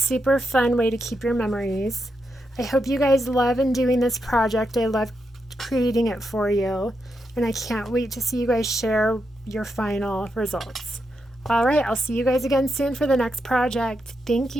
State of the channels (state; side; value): normal; both; correlation 0.84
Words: fun way to keep your memories. I hope you guys love and doing this project. I love creating it for you. And I can't wait to see you guys share your final results. All right, I'll see you guys again soon for the next project. Thank